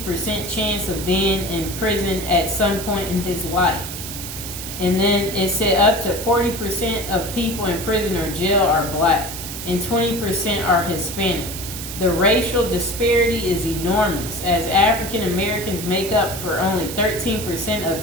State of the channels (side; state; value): right; noise; hiss, 8 dB below the sound